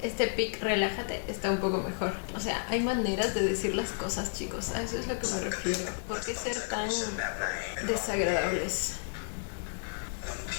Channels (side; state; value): right; silent; digital silence